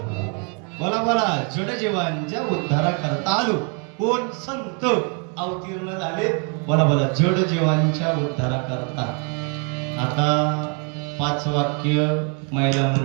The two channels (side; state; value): left; quieter; 37.2 dB